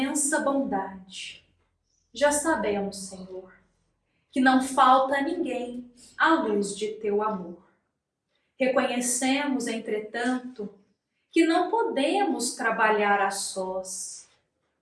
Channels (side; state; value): both; identical; correlation 1.00